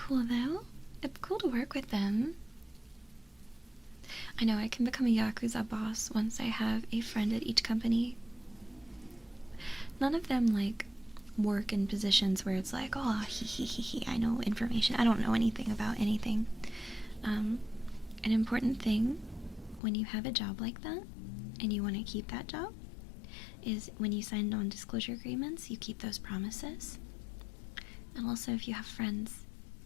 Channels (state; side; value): drops out; right; at 19.8 s